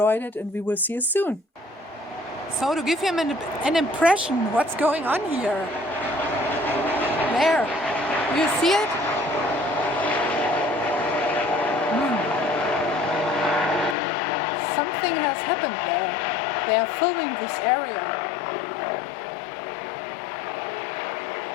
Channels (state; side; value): drops out; right; at 14.0 s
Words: it and we will see you soon. So to give him an impression what's going on here. There, you see it? Something has happened there. They are filming this area.